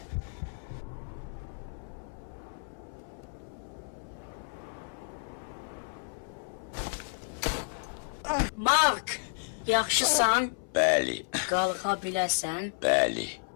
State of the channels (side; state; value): right; silent; 57 dB below the other